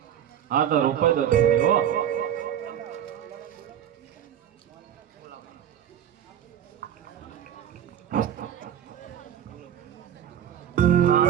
હા તો રોપાઈ દો જલ્દી, હો.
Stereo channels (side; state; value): left; quieter; 9.9 dB